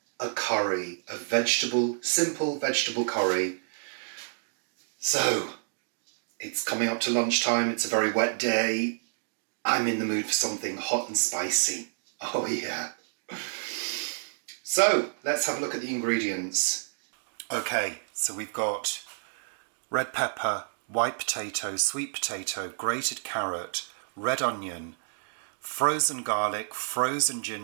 a curry, simple vegetable curry. So, it's coming up to lunchtime, it's a very wet day. I'm in the mood for something hot and spicy. Oh yeah. So, let's have a look at the ingredients. Okay, so we've got red pepper, white potato, sweet potato, grated carrot, red onion, frozen garlic, frozen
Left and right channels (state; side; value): silent; left; digital silence